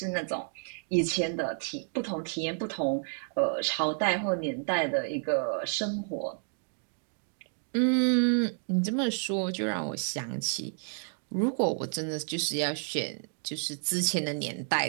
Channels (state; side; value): silent; left; 57 dB below the other